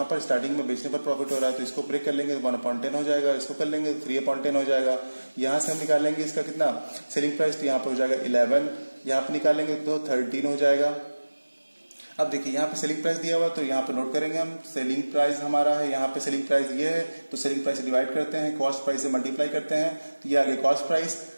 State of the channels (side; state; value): both; inverted; correlation -1.00